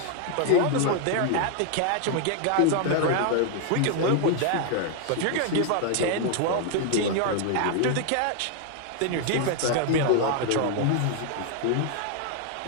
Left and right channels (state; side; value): different; both; correlation 0.00